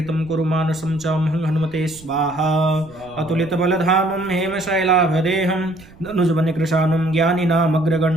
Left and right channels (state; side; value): noise; right; rumble, 22 dB below the sound